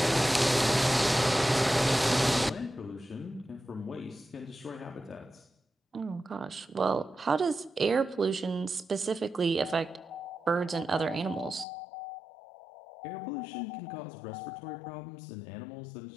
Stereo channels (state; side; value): drops out; right; at 11.7 s